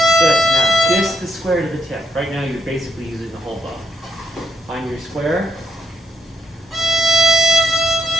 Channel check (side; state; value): both; normal; correlation 0.76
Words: Good. Now just the square to the tip. Right now you're basically using the whole bow. Find your square.